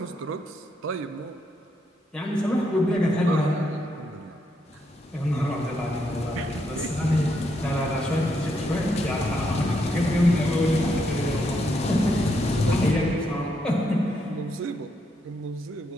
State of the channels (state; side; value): normal; both; correlation 0.78